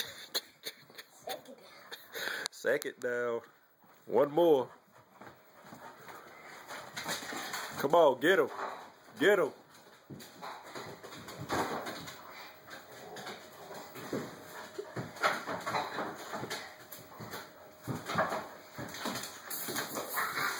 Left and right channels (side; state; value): both; identical; correlation 1.00